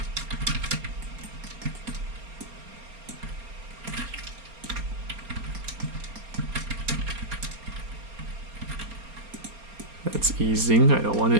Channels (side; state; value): left; late; 4.3 ms